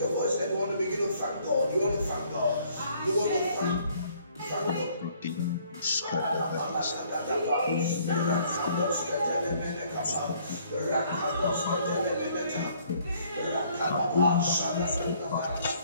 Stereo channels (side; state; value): both; inverted; correlation -0.62